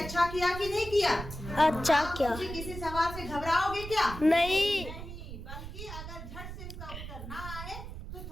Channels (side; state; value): right; noise; rumble, 9 dB below the sound